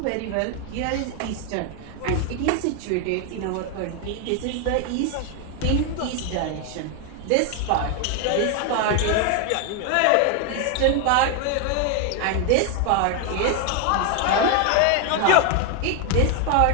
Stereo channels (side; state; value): both; different; correlation 0.01